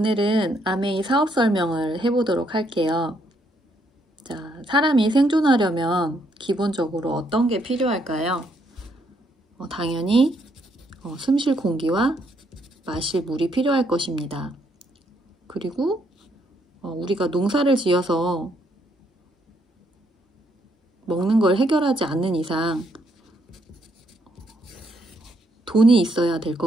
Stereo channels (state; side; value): normal; both; correlation 0.72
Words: 아메이 사업 설명을 해보도록 할게요. 자, 사람이 생존하려면 기본적으로 어떤 게 필요할까요? 당연히 숨 쉴 공기와 마실 물이 필요할 것입니다. 그리고 우리가 농사를 지어서 먹는 걸 해결하지 않는 이상 돈이 있어야 될